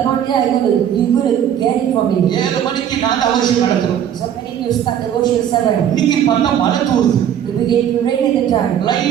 not there, you're going to get it from me. 7 மணிக்கு நாங்க அவசியம் நடத்துறோம். So when you start the worship 7, இன்னைக்கு பார்த்தா மழை தூருது. it began to rain at the time.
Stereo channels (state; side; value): quieter; left; 9.7 dB